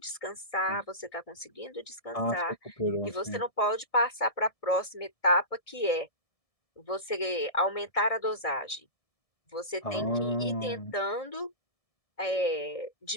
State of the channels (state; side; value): late; right; 1.7 ms